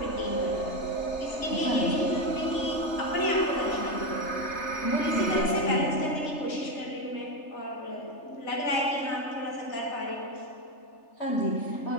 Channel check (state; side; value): late; right; 3.3 ms